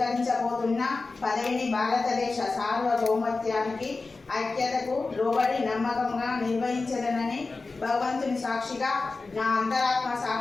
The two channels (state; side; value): quieter; right; 3.8 dB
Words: పదవిని భారతదేశ సార్వభౌమత్వానికి ఐక్యతకు లోబడి నమ్మకంగా నిర్వహించదనని భగవంతుని సాక్షిగా నా అంతరాత్మ